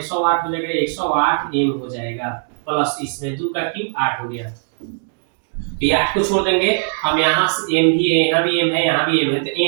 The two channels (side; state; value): left; silent; digital silence